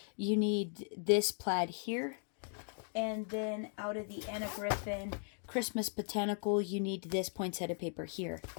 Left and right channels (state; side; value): silent; right; 53 dB below the other